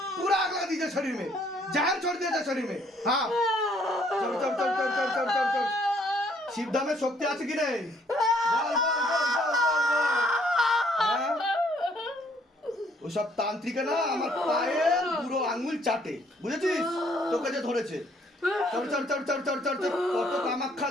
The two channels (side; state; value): both; normal; correlation 0.65